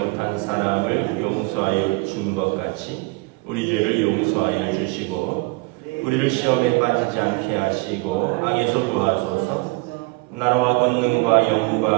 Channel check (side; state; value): left; quieter; 24.9 dB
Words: 사람을 용서하여 준 것 같이 우리 죄를 용서하여 주시고 우리를 시험에 빠지지 않게 하시고 악에서 구하소서. 나라와 권능과